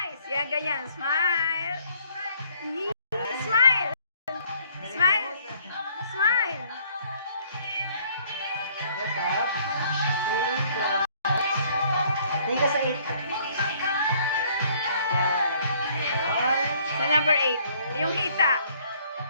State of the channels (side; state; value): both; inverted; correlation -0.61